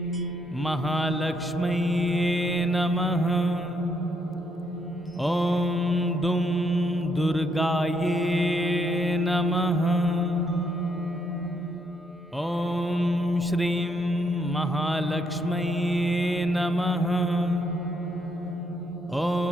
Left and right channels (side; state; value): both; normal; correlation 0.74